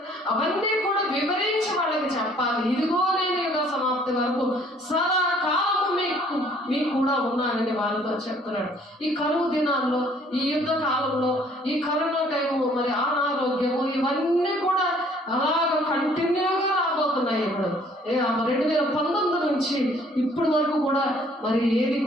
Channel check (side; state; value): both; normal; correlation 0.59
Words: అవన్నీ కూడా వివరించి వాళ్ళకి చెప్పాలి. ఇదిగో నేను యుగ సమాప్తి వరకు సదాకాలము మీకు కూడా ఉన్నానని వాళ్ళతో చెప్తున్నాడు. ఈ కరువు దినాల్లో, ఈ యుద్ధ కాలంలో, ఈ కరోనా టైము, మరి అనారోగ్యము, ఇవన్నీ కూడా అలాగ కంటిన్యూగా రాబోతున్నాయి. ఇప్పుడు 2019 నుంచి ఇప్పటి వరకు కూడా మరి ఏది